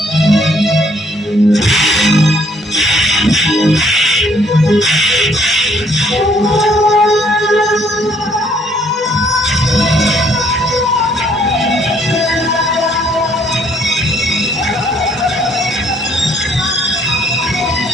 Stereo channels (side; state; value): both; normal; correlation 0.65